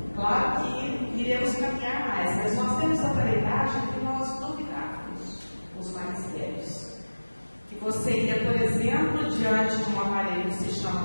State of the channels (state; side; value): inverted; both; correlation -1.00